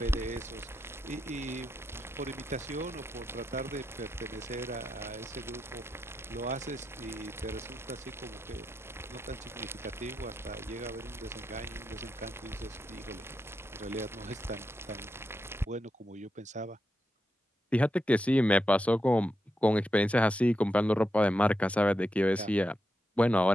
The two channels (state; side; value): normal; both; correlation 0.86